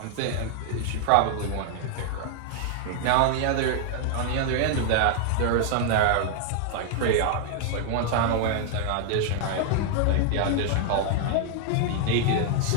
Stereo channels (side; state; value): both; different; correlation 0.00